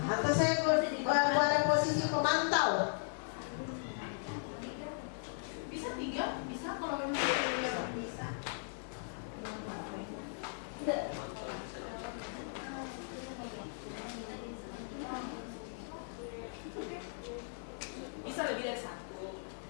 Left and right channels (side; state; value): right; silent; digital silence